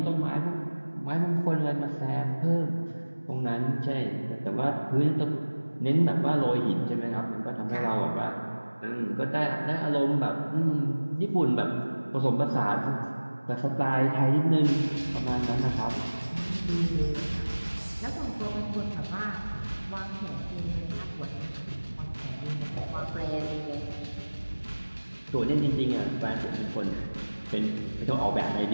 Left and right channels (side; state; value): both; inverted; correlation -1.00